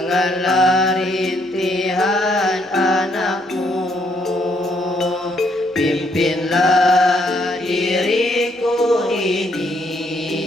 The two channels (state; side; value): normal; both; correlation 0.71